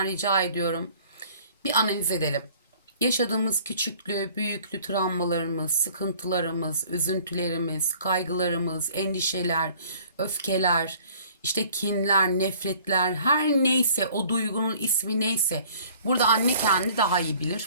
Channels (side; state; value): both; inverted; correlation -0.53